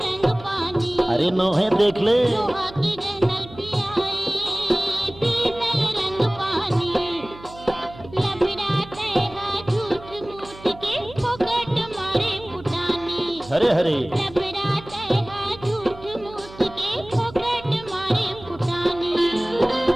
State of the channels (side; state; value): right; noise; hum, 18 dB below the sound